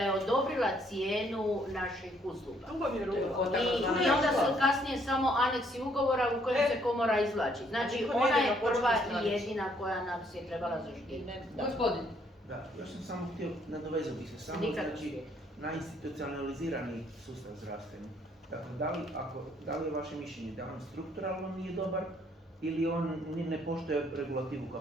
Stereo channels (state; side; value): normal; both; correlation 0.67